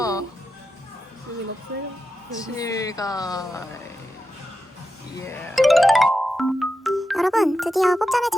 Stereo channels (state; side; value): normal; both; correlation 0.89